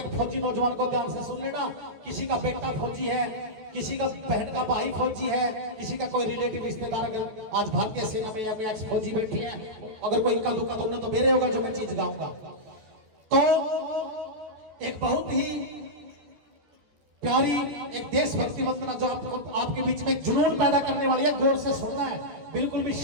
फौजी नौजवान को ध्यान से सुन लेना, किसी का बेटा फौजी है, किसी का बहन का भाई फौजी है, किसी का कोई रिलेटिव रिश्तेदार अगर आज भारतीय सेना में या कोई एक्स फौजी बैठी है, अगर कोई इक्का दुक्का तो उन्हें तो मेरे होगा जो मैं चीज गाऊंगा। तो एक बहुत ही प्यारी एक देशभक्ति वंदना जो आपके बीच में जुनून पैदा करने वाली है, गौर से सुनना है, बिल्कुल भी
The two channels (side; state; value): left; late; 14 ms